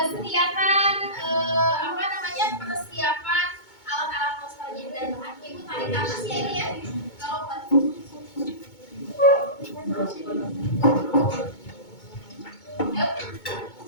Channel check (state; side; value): late; right; 2.2 ms